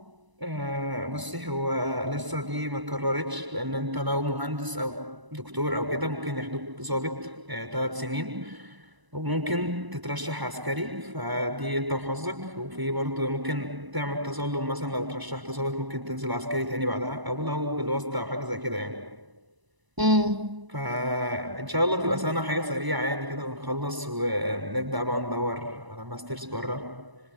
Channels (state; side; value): late; left; 1.0 ms